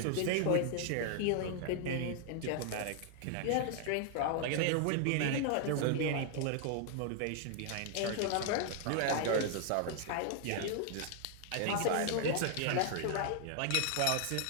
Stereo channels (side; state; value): both; different; correlation 0.00